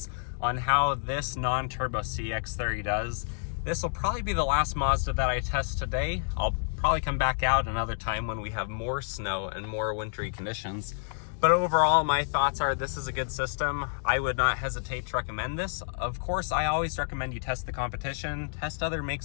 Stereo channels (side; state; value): right; silent; digital silence